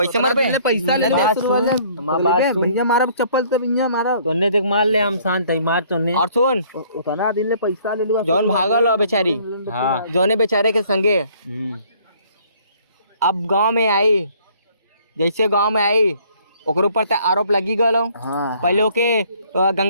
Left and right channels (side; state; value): both; inverted; correlation -0.59